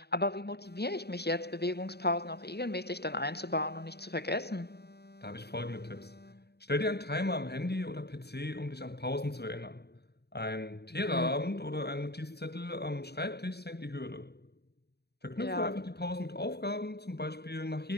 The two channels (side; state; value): right; late; 0.48 ms